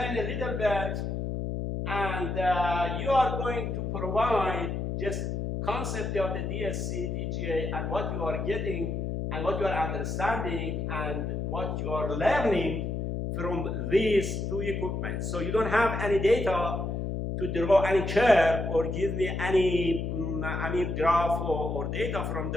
a little bit, and you are going to provide just concept of the DSC, TGA, and what you are getting, and what you are understanding, and what you are learning from these two equipment. So you don't have any data to draw any curve or give me any graph or data from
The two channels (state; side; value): noise; left; hum, 2 dB below the sound